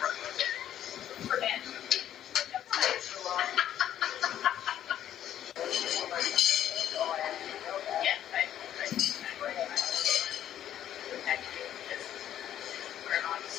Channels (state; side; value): quieter; right; 11.1 dB